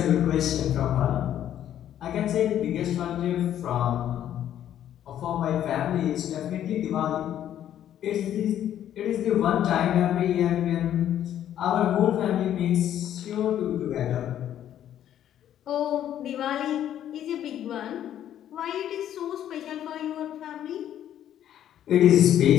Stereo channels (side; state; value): right; quieter; 11.0 dB